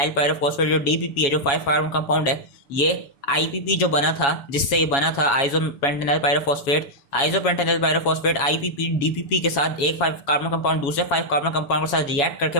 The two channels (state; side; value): late; right; 7.2 ms